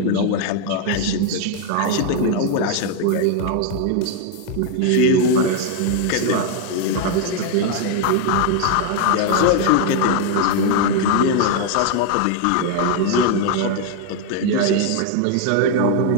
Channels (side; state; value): both; different; correlation 0.00